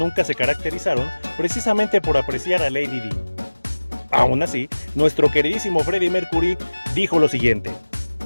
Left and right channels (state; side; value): inverted; both; correlation -1.00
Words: se caracterizaron precisamente por apreciar a Lady Di. Aún así, nuestro queridísimo Freddie Mercury dijo lo siguiente: